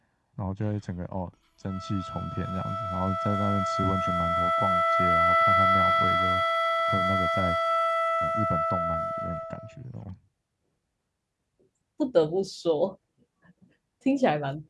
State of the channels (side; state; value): both; identical; correlation 1.00